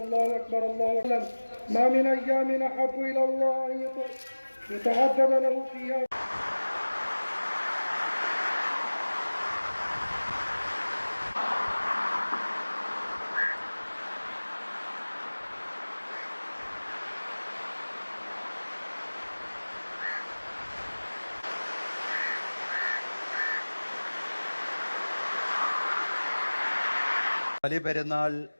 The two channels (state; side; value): inverted; both; correlation -1.00